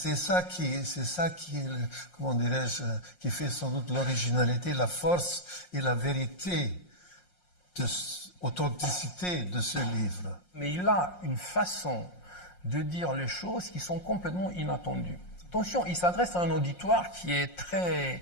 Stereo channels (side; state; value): right; late; 5.6 ms